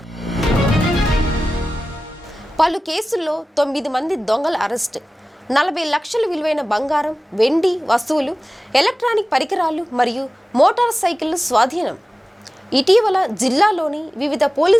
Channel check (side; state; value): both; normal; correlation 0.96